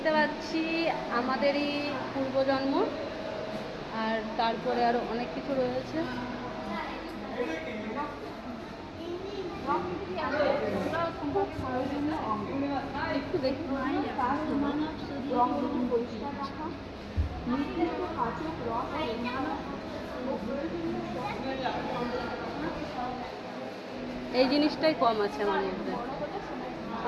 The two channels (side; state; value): both; identical; correlation 1.00